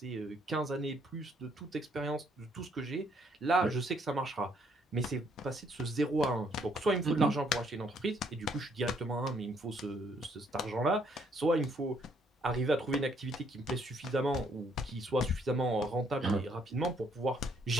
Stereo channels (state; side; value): normal; both; correlation 0.68